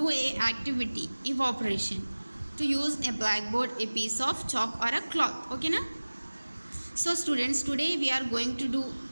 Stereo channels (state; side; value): inverted; both; correlation -1.00